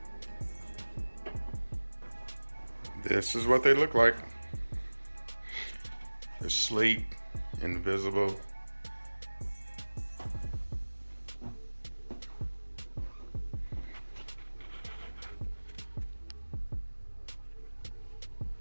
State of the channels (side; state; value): both; inverted; correlation -1.00